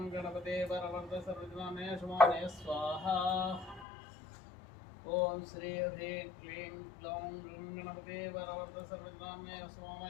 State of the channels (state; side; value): drops out; right; at 3.9 s